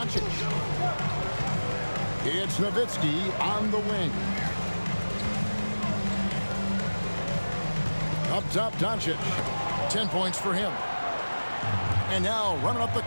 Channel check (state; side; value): inverted; both; correlation -1.00